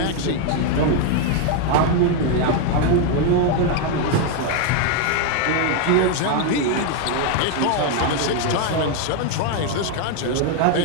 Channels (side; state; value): both; different; correlation 0.01